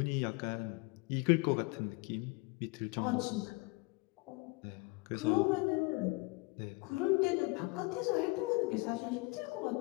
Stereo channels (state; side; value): quieter; right; 26.2 dB